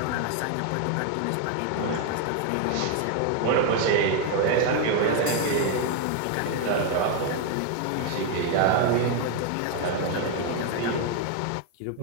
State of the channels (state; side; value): different; both; correlation 0.00